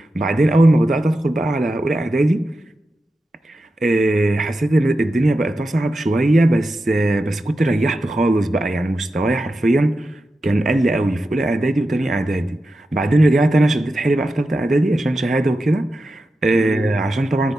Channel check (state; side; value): normal; both; correlation 0.90